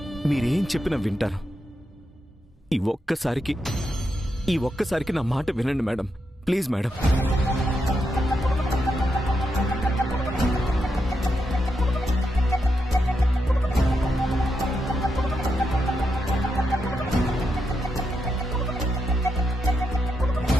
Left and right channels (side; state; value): both; normal; correlation 0.84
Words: మీరేం చెప్పినా వింటాను. ఈ ఒక్కసారికి నా మాట వినండి madam, please madam.